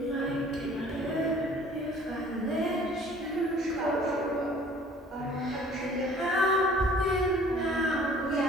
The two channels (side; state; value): both; normal; correlation 0.52